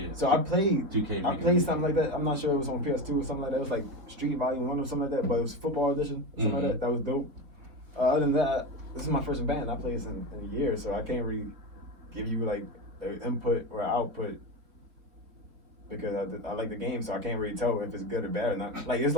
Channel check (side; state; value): left; late; 4.3 ms